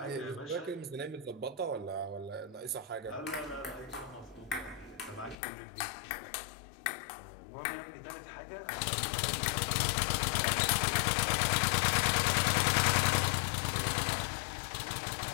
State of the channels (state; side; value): drops out; right; at 5.4 s